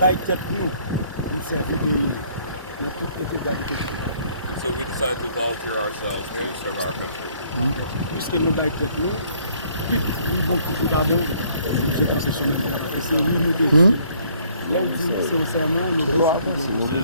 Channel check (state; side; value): inverted; both; correlation -0.63